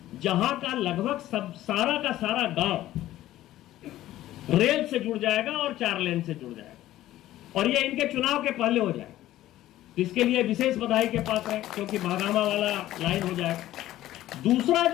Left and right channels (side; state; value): right; quieter; 14.4 dB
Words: जहां का लगभग सब सारा का सारा गांव रेल से जुड़ जाएगा और 4 लेन से जुड़ जाएगा, और ये इनके चुनाव के पहले हो जाएगा। इसके लिए विशेष बधाई के पात्र है क्योंकि महागामा वाला लाइन हो जाएगा। दूसरा,